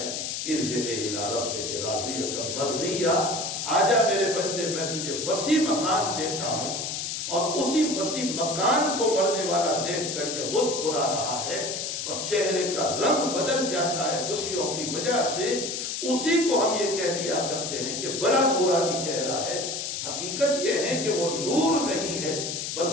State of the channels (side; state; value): left; noise; hiss, 4 dB below the sound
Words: ارجع الی ربک راضیۃ مرضیہ، آجا میرے بندے میں تجھے وسیع مکان دیتا ہوں۔ اور اسی وسیع مکان کو مرنے والا دیکھ کر کے مسکرا رہا ہے اور چہرے کا رنگ بدل جاتا ہے خوشیوں کی وجہ سے، اسی کو ہم یہ کہہ دیا کرتے ہیں کہ بڑا نورانی چہرہ ہے۔ حقیقت یہ ہے کہ وہ نور نہیں ہے